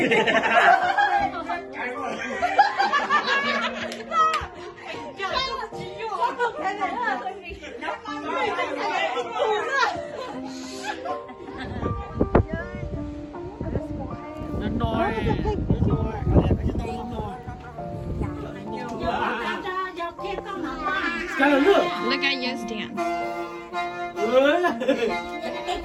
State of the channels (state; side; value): identical; both; correlation 1.00